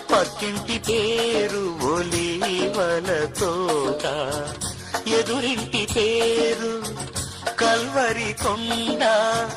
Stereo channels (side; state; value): both; identical; correlation 1.00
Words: పక్కింటి పేరు ఒలీవల తోట. ఎదురింటి పేరు కల్వరి కొండ,